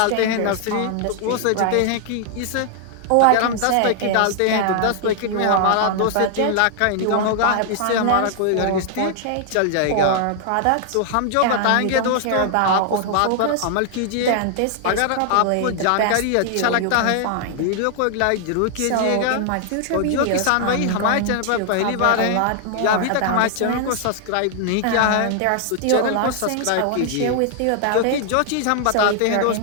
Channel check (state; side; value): different; both; correlation 0.00